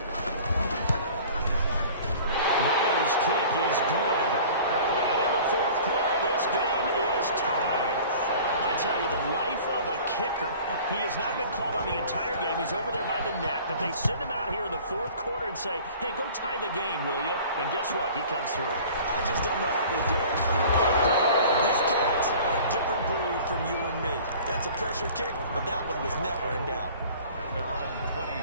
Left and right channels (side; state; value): both; inverted; correlation -0.45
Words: kick is good. And in the fourth quarter, this game is tied. I tell you, the life of a kicker. He has not been called on the entire game. He's over there by the net, but they send him out here in the fourth quarter and say, hey, go tie the game, will you? And guess what? He comes through. I just don't know how they do it. These cats are a different breed from you and me. That's a pressure kick, but that one was never in doubt. At their own